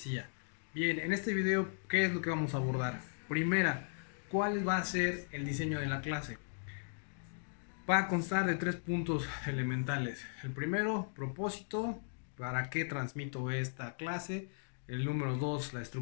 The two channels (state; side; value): silent; right; digital silence